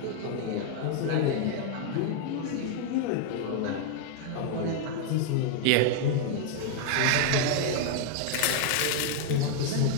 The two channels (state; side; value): different; both; correlation 0.00